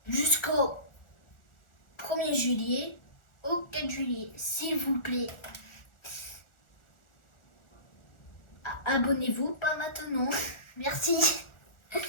jusqu'au 1er juillet au 4 juillet, s'il vous plaît. Abonnez-vous, pas maintenant. Merci.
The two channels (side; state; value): right; late; 1.4 ms